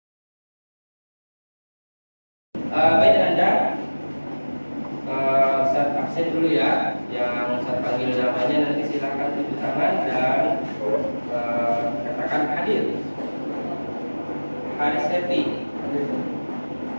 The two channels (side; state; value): both; inverted; correlation -1.00